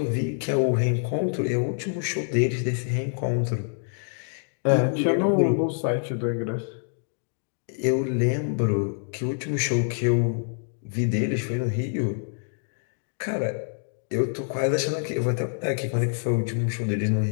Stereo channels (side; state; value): right; silent; digital silence